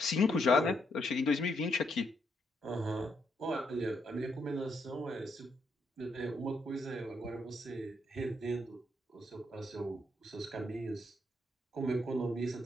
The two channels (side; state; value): both; normal; correlation 0.76